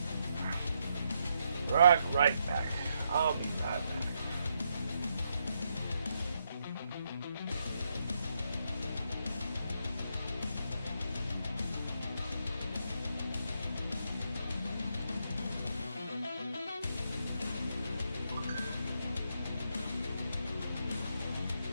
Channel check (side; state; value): both; inverted; correlation -0.79